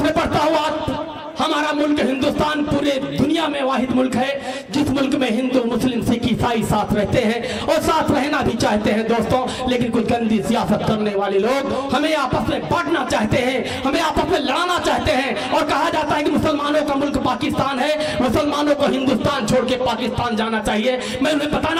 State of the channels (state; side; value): identical; both; correlation 1.00